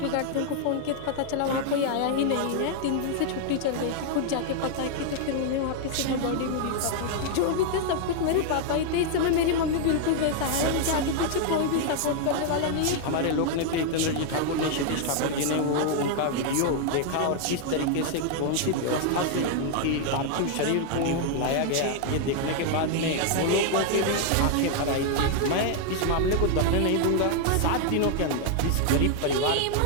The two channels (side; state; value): both; different; correlation 0.00